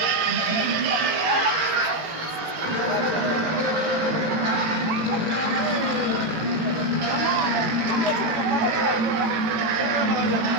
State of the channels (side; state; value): left; late; 18 ms